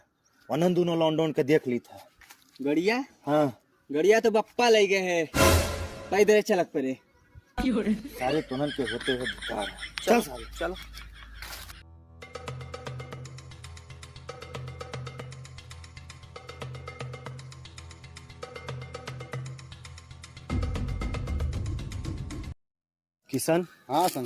अनंत दोनों लॉन्डन के देख ली था। गड़िया हाँ गड़िया तो बप्पा ले गए है, पैदल चलक पड़े। सारे तुनन के होते हुए बेकार है। चल सारे चलो। किशन हाँ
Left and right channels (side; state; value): both; identical; correlation 1.00